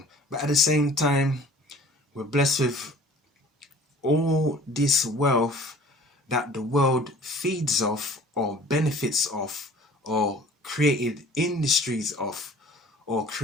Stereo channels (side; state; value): both; normal; correlation 0.49